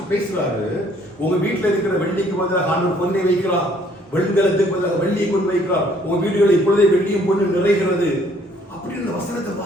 பேசுறாரு, உங்க வீட்டுல இருக்கிற வெள்ளிக்கு பதிலாக ஆண்டவர் பொன்னை வைக்கிறார், வெண்கலத்துக்கு பதிலாக வெள்ளியை கொண்டு வைக்கிறார், உங்க வீடுகளில் இப்பொழுதே வெள்ளியும் பொண்ணு நிறைகிறது அப்படின்னு வசனத்தை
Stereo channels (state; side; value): normal; both; correlation 0.62